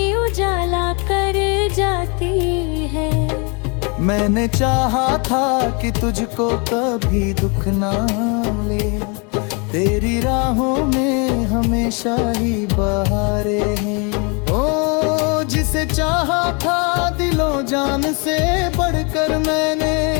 उजाला कर जाती है। मैंने चाहा था कि तुझको कभी दुख ना ले, तेरी राहों में हमेशा ही बहारें हैं। ओ जिसे चाहा था दिलो जान से बढ़कर मैंने,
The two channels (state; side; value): quieter; right; 33.3 dB